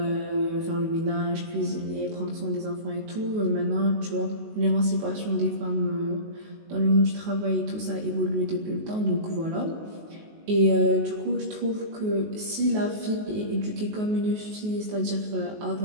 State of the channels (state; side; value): late; left; 19 ms